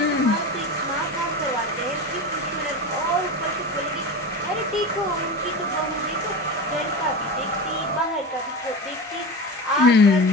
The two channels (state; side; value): normal; both; correlation 0.26